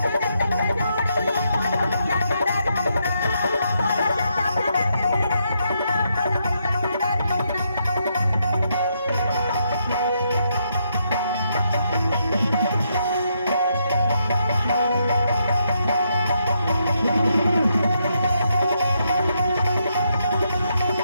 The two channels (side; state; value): both; inverted; correlation -0.78